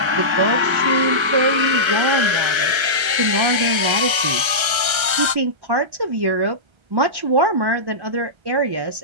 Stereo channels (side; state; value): left; late; 1.3 ms